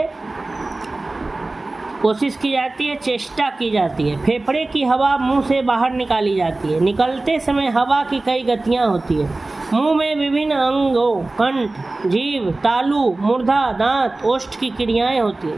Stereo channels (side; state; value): left; quieter; 3.1 dB